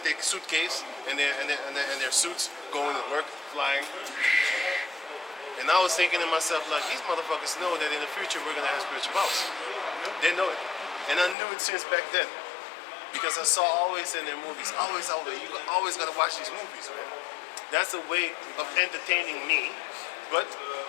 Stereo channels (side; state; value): right; drops out; at 11.4 s